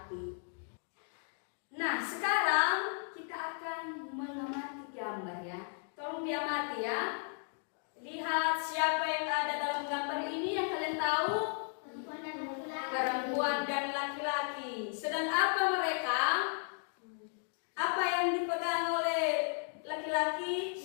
Nah, sekarang kita akan mengamati gambar ya. Tolong diamati ya. Lihat siapa yang ada dalam gambar ini yang kalian tahu? Perempuan dan laki-laki. Sedang apa mereka? Apa yang dipegang oleh laki-laki?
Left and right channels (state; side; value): silent; right; 54 dB below the other